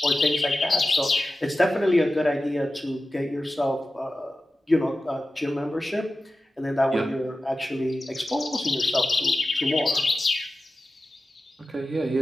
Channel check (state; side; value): normal; both; correlation 0.94